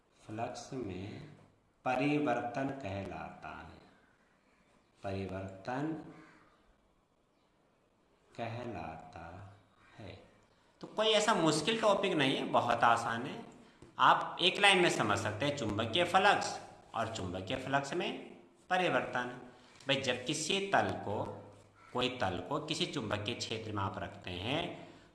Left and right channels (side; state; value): both; identical; correlation 1.00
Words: फ्लक्स में परिवर्तन कहलाता है। परिवर्तन कहलाता है। तो कोई ऐसा मुश्किल टॉपिक नहीं है, बहुत आसान है। आप एक लाइन में समझ सकते हैं, चुंबकीय फ्लक्स और चुंबकीय फ्लक्स में परिवर्तन। भाई, जब कोई तल को किसी चुंबकीय क्षेत्र में आप रखते हैं